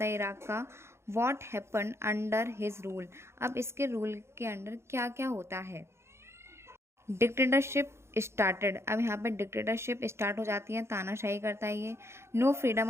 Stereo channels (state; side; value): late; left; 0.13 ms